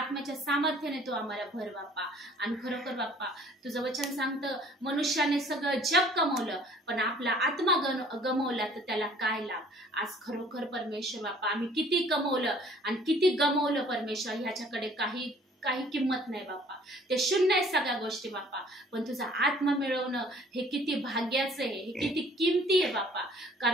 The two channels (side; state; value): both; normal; correlation 0.55